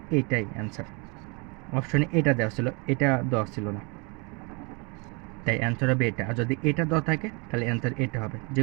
এইটাই অ্যান্সার। অপশনে এটা দেওয়া ছিল, এটা দেওয়া ছিল না, তাই অ্যান্সার হবে এটা। আর যদি এটা দেওয়া থাকে তাহলে অ্যান্সার এটা হবে, যে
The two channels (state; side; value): quieter; left; 31.0 dB